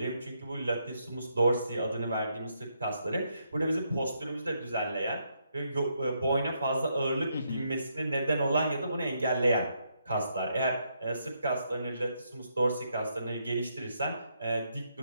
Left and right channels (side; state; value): both; inverted; correlation -0.77